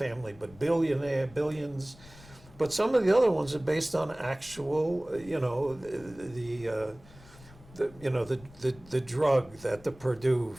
but billions. But some of the other ones are based on actual, the drug that the Purdue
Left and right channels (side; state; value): left; noise; rumble, 22 dB below the sound